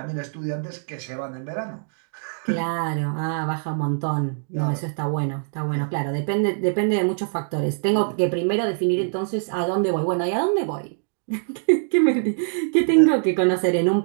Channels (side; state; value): left; silent; digital silence